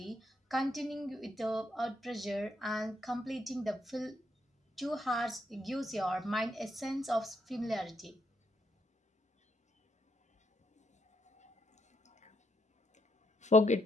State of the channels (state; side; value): normal; both; correlation 0.76